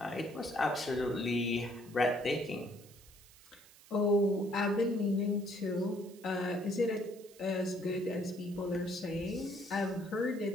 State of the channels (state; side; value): noise; right; hiss, 23 dB below the sound